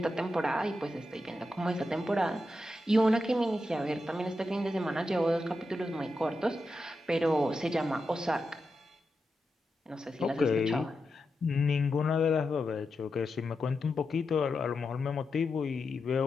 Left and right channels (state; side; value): normal; both; correlation 0.88